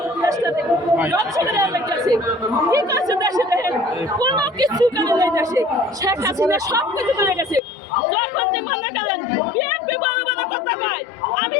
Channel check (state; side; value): drops out; right; at 7.6 s